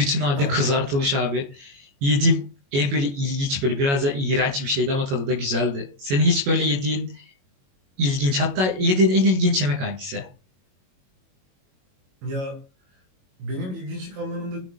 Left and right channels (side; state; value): left; late; 22 ms